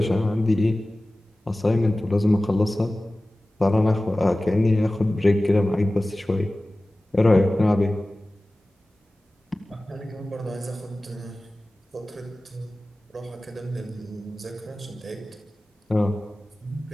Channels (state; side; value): normal; both; correlation 0.97